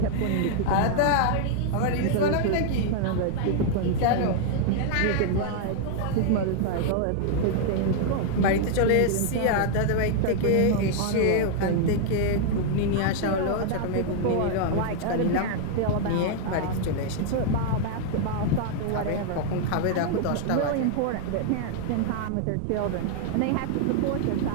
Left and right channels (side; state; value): both; different; correlation 0.00